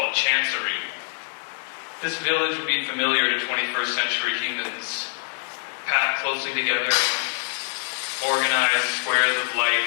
Chancery. This village would be familiar to 21st century humans, packed closely together, organized squares of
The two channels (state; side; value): silent; right; digital silence